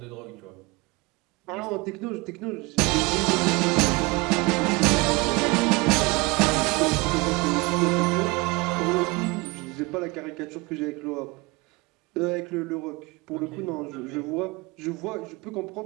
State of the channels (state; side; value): quieter; left; 25.2 dB